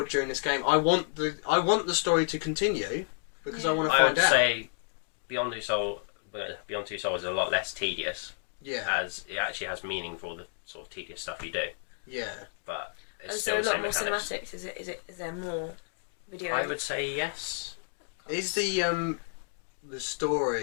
during this game. I want the story to continue because I want to find out. I would say Beyond Two Souls is a lot less tedious. Yeah. As it actually has meaning for the sort of tedious stuff you do. Yeah. But it's is still there a the lot same more mechanics. cinematics? Is there more video? I would say yes. Is the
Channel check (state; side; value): silent; right; 57 dB below the other